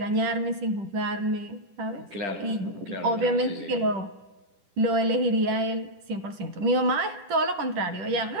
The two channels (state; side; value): late; left; 10 ms